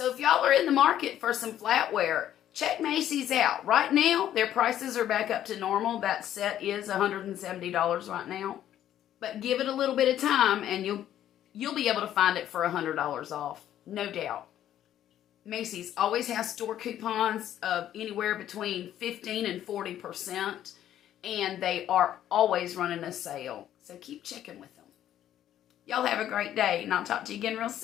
if y'all are in the market for some flatware, check Macy's out. Right now, their prices are back up to normal. That set is $170 right now. But give it a little bit of time and you'll be able to find it for $100 off. No doubt. Macy's always has store coupons of anywhere between 15 and 40%. And they are always running a sale. So keep checking with them. Y'all have a great day, and I'll talk to you again real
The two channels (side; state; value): right; quieter; 11.4 dB